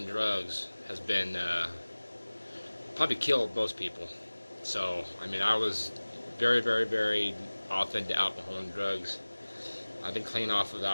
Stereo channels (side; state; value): both; inverted; correlation -1.00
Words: drugs has been probably killed most people. So I mean, I was very off into alcohol and drugs. I've been clean off of